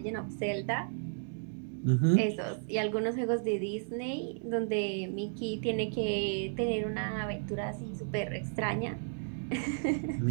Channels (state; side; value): silent; left; digital silence